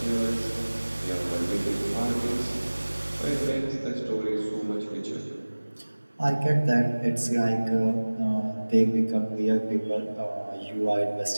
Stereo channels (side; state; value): both; inverted; correlation -1.00